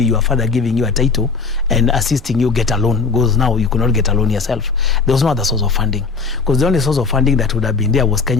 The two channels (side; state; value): right; quieter; 4.8 dB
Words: your father giving you a title and assisting you get a loan, because now you could not get a loan yourself. There was no other source of funding, because the only source of funding that would have been there was